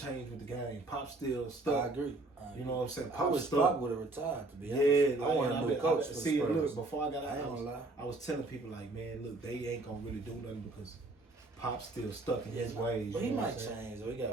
with the game. Pop still I stuck. agree. You know what I'm saying? I Pop wish stuck. Pop would have retired, to be honest. Yeah, I want a new coach for the See, Spurs. look, before I got I ain't out, gonna lie. I was telling people like, man, look, they ain't gonna really do nothing because Pop's still stuck in his Yeah, ways. But he you know might what I'm saying? change, though. He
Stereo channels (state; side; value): quieter; left; 3.0 dB